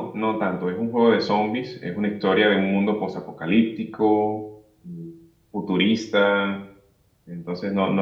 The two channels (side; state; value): both; identical; correlation 1.00